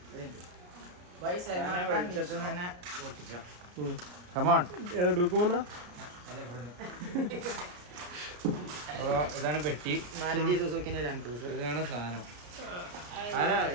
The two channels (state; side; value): late; left; 33 ms